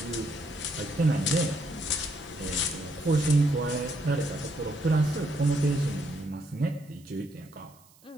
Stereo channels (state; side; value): noise; right; hiss, 28 dB below the sound